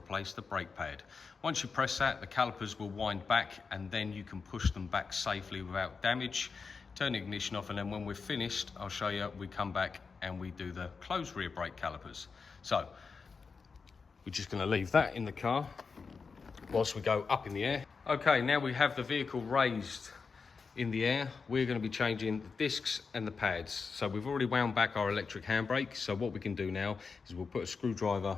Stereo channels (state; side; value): quieter; right; 5.0 dB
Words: the brake pad. Once you press that, the calipers will wind back and then you can push them back safely without damage. Turn the ignition off, and then when we're finished, I'll show you, we come back and we do the closed rear brake calipers. So we're just going to leave that in the car whilst we go up in the air. Okay, now we have the vehicle raised in the air. We're going to be changing the discs and the pads. So we've already wound back our electric handbrake. So what we can do now is we'll put a